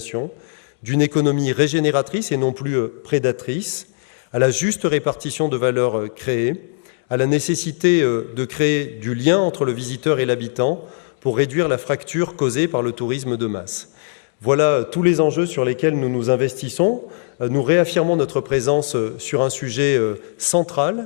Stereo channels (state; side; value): silent; right; digital silence